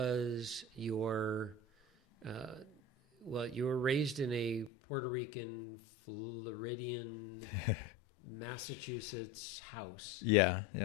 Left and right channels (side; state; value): right; drops out; at 4.7 s